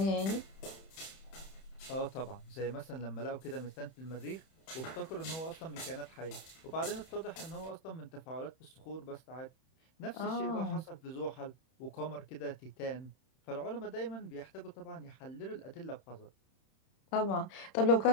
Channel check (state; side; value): late; right; 31 ms